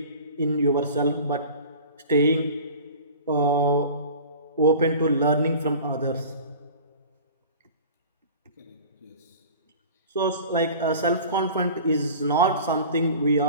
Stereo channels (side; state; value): both; inverted; correlation -0.40